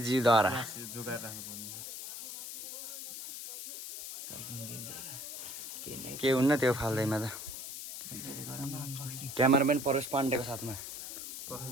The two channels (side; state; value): left; noise; hiss, 8 dB below the sound